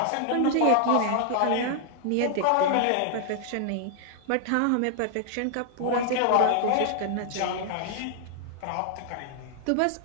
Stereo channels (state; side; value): different; both; correlation 0.00